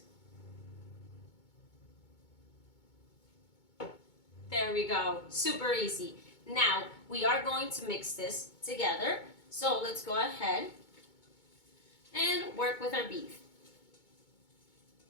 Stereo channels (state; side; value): late; right; 2.2 ms